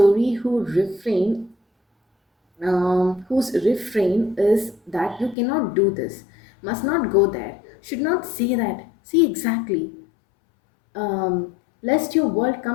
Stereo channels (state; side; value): drops out; right; at 5.4 s